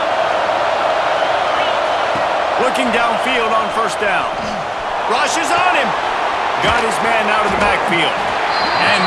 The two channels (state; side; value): identical; both; correlation 1.00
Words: Looking downfield on 1st down. Rushes on him. Got his man out of the backfield. And